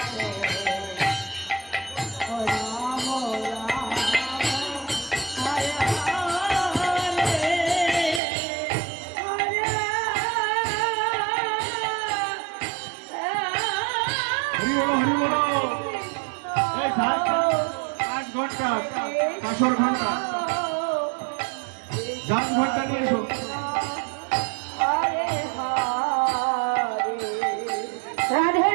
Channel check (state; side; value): drops out; left; at 8.2 s